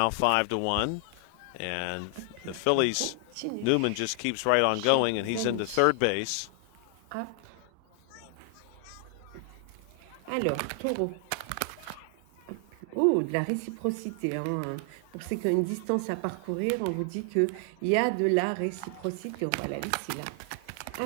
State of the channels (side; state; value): both; different; correlation 0.00